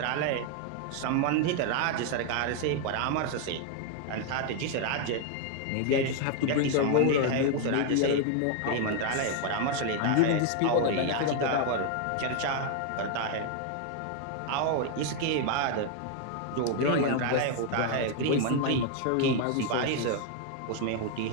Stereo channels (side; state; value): both; different; correlation 0.00